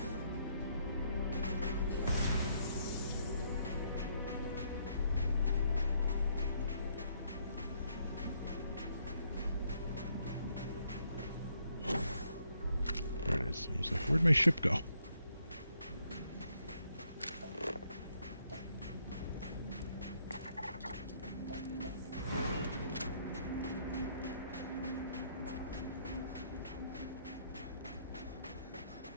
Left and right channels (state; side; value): inverted; both; correlation -0.71